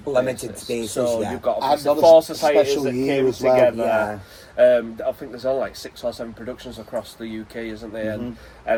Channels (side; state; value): both; identical; correlation 1.00